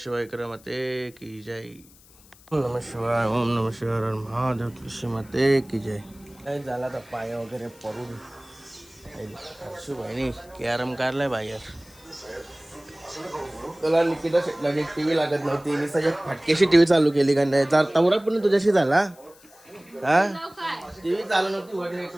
क्रमते की जय. ओम नमः शिवाय, ओम नमः शिवाय, महादेव श्रीमते की जय. काय झाला तर पाय वगैरे पडून हर्षू भाईनी कॅरम काढलाय बाहेर. तुला निकिता शेटला एक टीव्ही लागत नव्हती, मी सगळ्या फटकेशी टीव्ही चालू केली का नाही. तवरा पण तुझ्याशी झाला हा. टीव्ही चालू नव्हती, वर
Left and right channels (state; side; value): noise; left; hiss, 26 dB below the sound